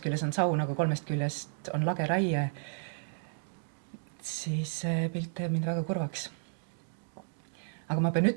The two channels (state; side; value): silent; left; digital silence